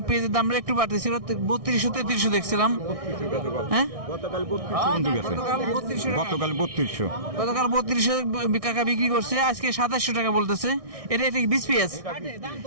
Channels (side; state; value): left; late; 1.6 ms